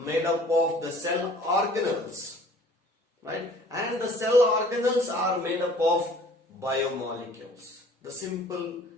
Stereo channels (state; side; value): normal; both; correlation 0.52